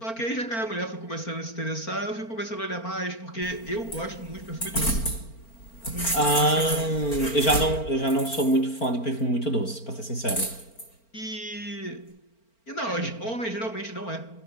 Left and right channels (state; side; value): late; right; 4.4 ms